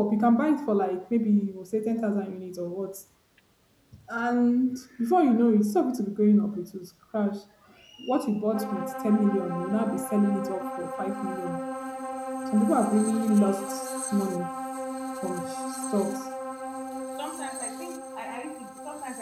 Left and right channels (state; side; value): identical; both; correlation 1.00